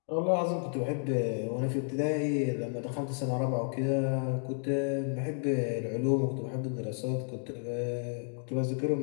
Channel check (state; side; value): silent; right; 57 dB below the other